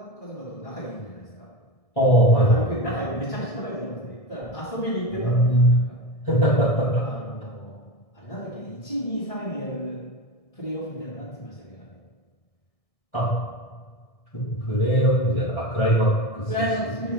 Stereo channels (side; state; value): right; late; 1.6 ms